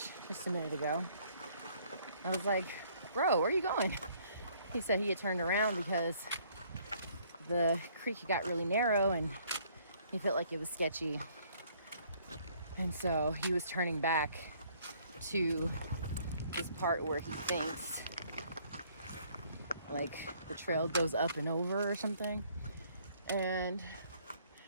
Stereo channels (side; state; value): both; inverted; correlation -0.62